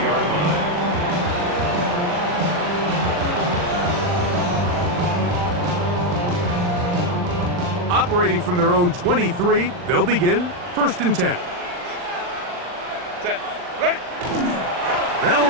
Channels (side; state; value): left; late; 40 ms